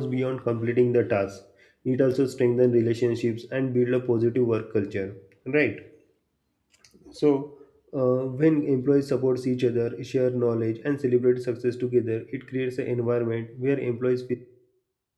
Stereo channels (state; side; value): identical; both; correlation 1.00